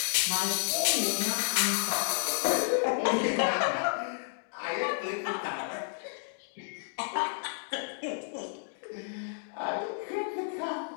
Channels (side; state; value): right; silent; digital silence